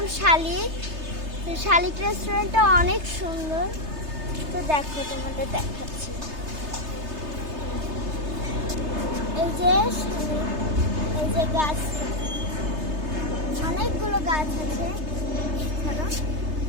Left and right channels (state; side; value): late; left; 3.3 ms